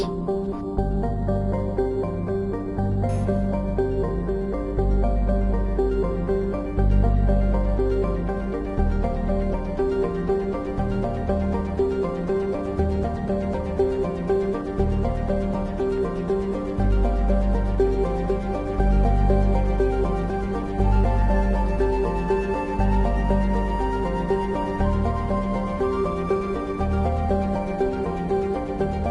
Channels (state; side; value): identical; both; correlation 1.00